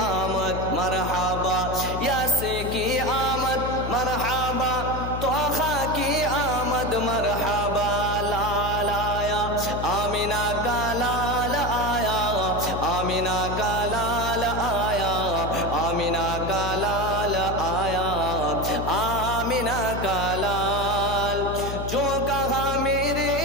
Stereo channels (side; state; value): left; noise; hum, 5 dB below the sound